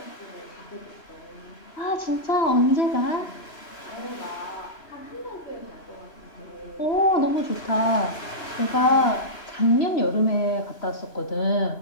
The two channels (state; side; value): late; right; 3.0 ms